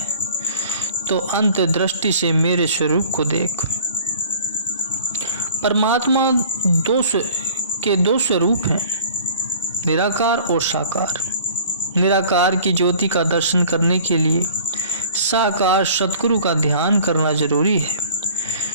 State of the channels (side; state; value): both; inverted; correlation -0.48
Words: तो अंत दृष्टि से मेरे स्वरूप को देख। परमात्मा दो स्वरूप हैं, निराकार और साकार। निराकार की ज्योति का दर्शन करने के लिए साकार सद्गुरु का ध्यान करना जरूरी है,